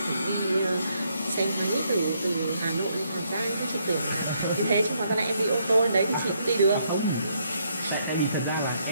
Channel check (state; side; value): inverted; both; correlation -0.73